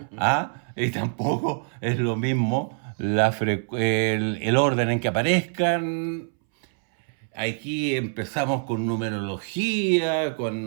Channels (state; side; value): silent; left; 62 dB below the other